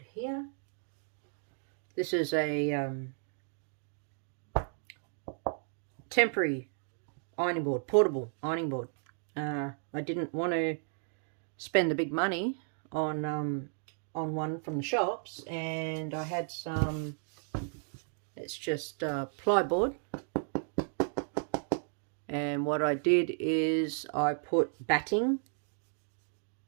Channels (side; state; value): left; silent; 55 dB below the other